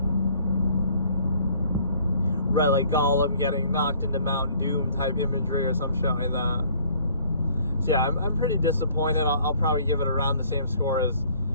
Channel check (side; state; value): both; inverted; correlation -0.57